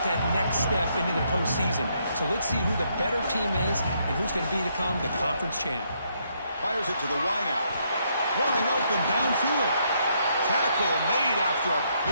that next step into the postseason. So let's see who the better team is and who's going to become the conference champ. Fires it to the wideout. Wide open downfield. Tackle made after a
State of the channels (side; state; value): both; inverted; correlation -0.74